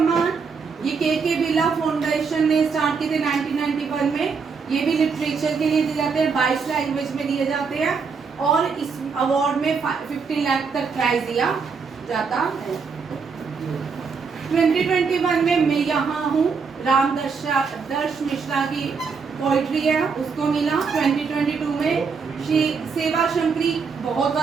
ये के बिरला फाउंडेशन ने स्टार्ट किए थे 1991 में। ये भी लिटरेचर के लिए दिए जाते हैं, 22 लैंग्वेज में दिए जाते हैं, और इस अवार्ड में 15 लाख तक प्राइज दिया जाता है। 2021 में मैं यहाँ हूँ, दर्श मिश्रा की पोइट्री है, उसको मिला। 2022 में सेवा शंकरी बहुत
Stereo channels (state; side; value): quieter; left; 5.4 dB